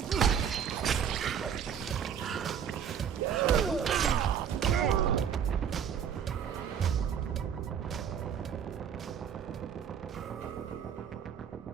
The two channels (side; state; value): left; quieter; 8.2 dB